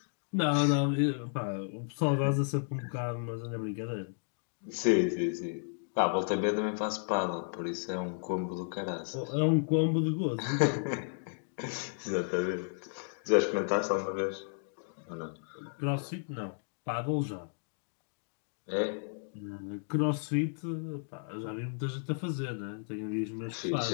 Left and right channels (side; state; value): right; silent; digital silence